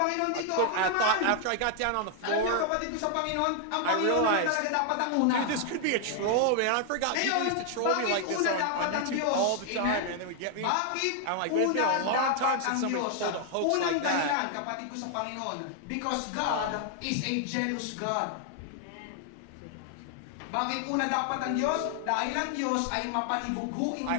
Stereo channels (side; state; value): both; different; correlation 0.00